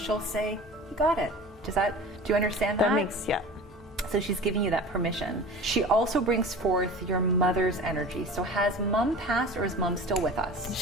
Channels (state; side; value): normal; both; correlation 0.38